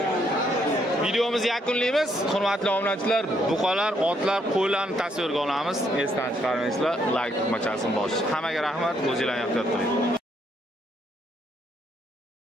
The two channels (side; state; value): both; normal; correlation 0.73